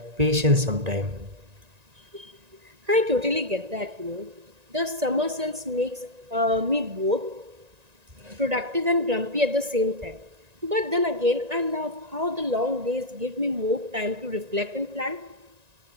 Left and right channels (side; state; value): left; late; 1.9 ms